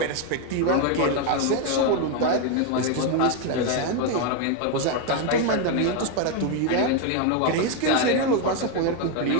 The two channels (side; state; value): both; different; correlation 0.01